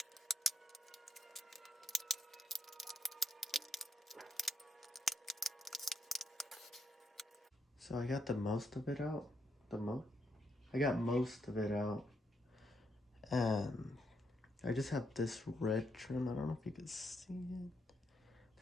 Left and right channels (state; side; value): normal; both; correlation 0.78